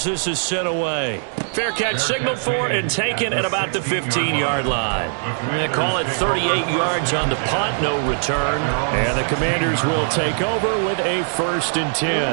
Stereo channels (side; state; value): left; silent; digital silence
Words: this is sent away. Fair catch signaled for and taken at about the 15-yard line. They call it 38 yards on the punt, no return. And the Commanders will take over with a 1st and